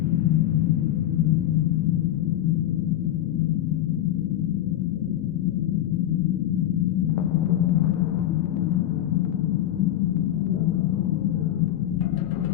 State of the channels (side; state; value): right; quieter; 12.8 dB